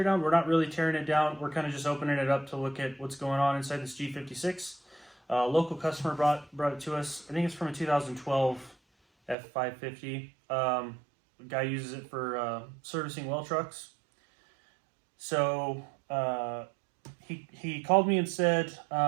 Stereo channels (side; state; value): left; drops out; at 9.3 s